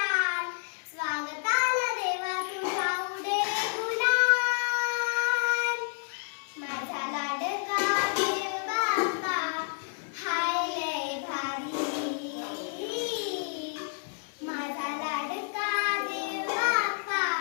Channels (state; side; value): silent; right; 58 dB below the other